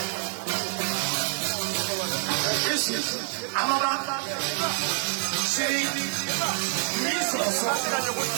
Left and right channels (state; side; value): silent; left; digital silence